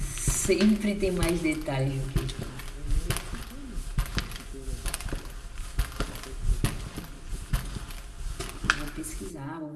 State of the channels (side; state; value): both; identical; correlation 1.00